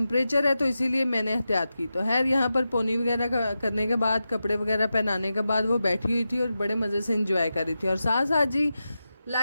है, तो इसीलिए मैंने एहतियात की। तो यहाँ पर पोनी वगैरह करने के बाद कपड़े वगैरह पहनाने के बाद वो बैठी हुई थी और बड़े मज़े से इंजॉय कर रही थी। और साथ साथ जी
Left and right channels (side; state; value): both; inverted; correlation -0.91